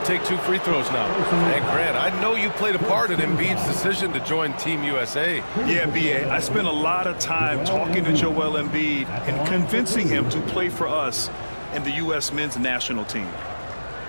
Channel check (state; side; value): inverted; both; correlation -1.00